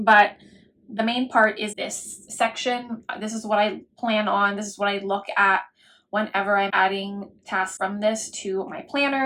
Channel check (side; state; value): both; identical; correlation 1.00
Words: the main part is this section. This is what I plan on. This is what I look at whenever I'm adding tasks from this to my